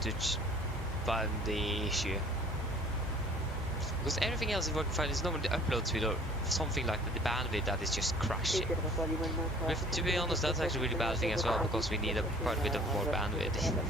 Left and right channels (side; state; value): both; normal; correlation 0.51